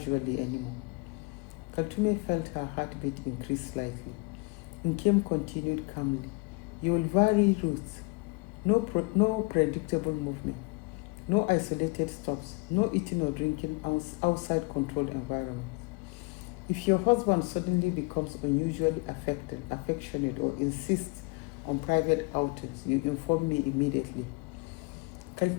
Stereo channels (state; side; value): quieter; right; 28.0 dB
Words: anymore. Kaltume felt her heartbeat increase slightly. Nkem continued calmly. You will vary routes. No predictable movement. No isolated stops. No eating or drinking outside controlled environments. If your husband suddenly becomes unusually affectionate, or insists on private outings, you inform me immediately.